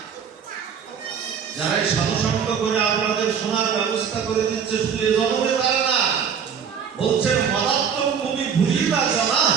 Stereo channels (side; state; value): left; quieter; 7.2 dB